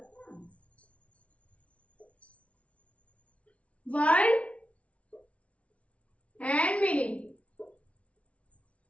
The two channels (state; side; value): late; right; 0.064 ms